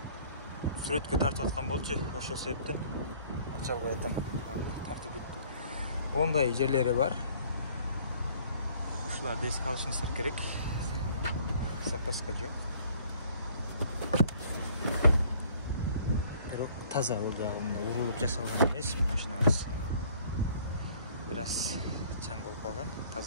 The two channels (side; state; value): both; inverted; correlation -0.56